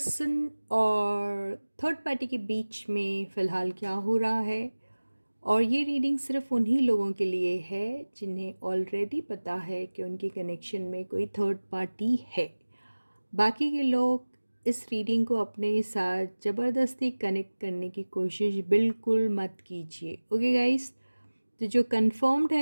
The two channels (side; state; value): both; inverted; correlation -1.00